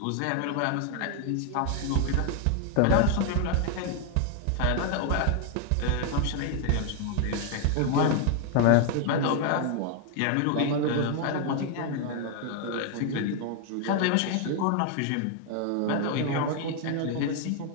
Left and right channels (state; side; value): different; both; correlation 0.00